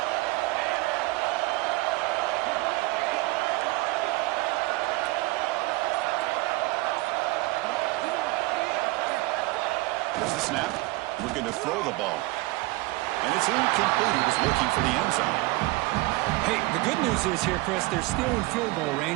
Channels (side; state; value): left; quieter; 22.1 dB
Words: There's the snap. Looking to throw the ball. And it's incomplete. He was looking for the end zone. Hey, the good news is here, Chris, they're still in field goal